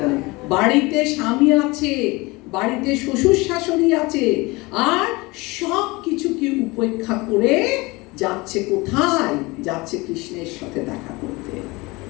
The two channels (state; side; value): quieter; right; 23.6 dB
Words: বাড়িতে স্বামী আছে, বাড়িতে শ্বশুর শাশুড়ি আছে, আর সব কিছুকে উপেক্ষা করে যাচ্ছে কোথায়? যাচ্ছে কৃষ্ণের সাথে দেখা করতে।